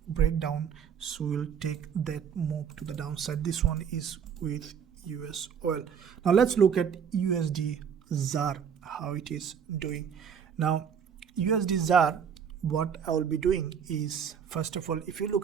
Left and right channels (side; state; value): left; quieter; 7.5 dB